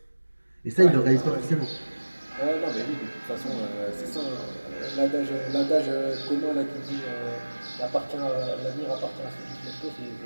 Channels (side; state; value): both; inverted; correlation -1.00